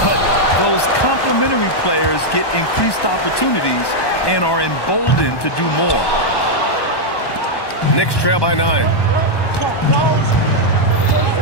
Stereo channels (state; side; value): late; right; 1.1 ms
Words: but those complementary players get increased opportunities and are emboldened to do more. Knicks trail by 9.